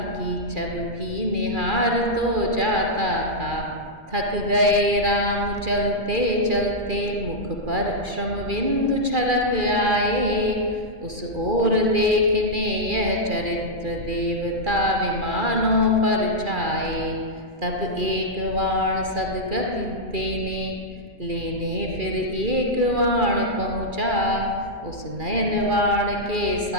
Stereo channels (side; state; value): left; late; 2.4 ms